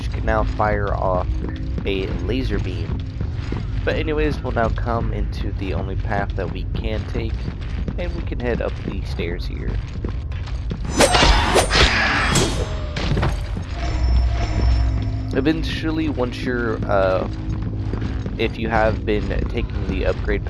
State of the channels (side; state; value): both; identical; correlation 1.00